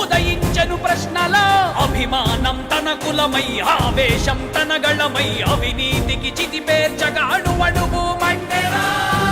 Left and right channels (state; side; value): identical; both; correlation 1.00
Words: ఉదయించెను ప్రశ్నల అభిమానం తన కులమై ఆవేశం తన గళమై అవినీతికి చితిపేర్చగా అణువణువు మండెరా